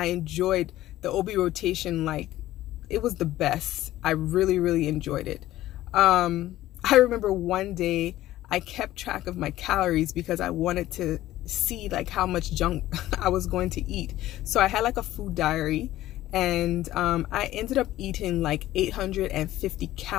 enjoyed the OB rotation. Like, it was the best. I really, really enjoyed it. I remember one day I kept track of my calories because I wanted to see like how much junk I was going to eat. So I had like a food diary, and I ended up eating like 850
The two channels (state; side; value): quieter; right; 14.9 dB